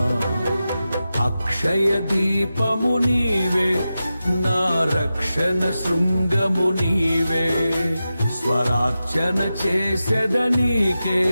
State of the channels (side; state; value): both; inverted; correlation -0.92